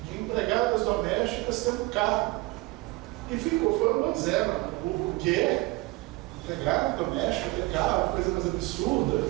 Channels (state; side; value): quieter; left; 21.7 dB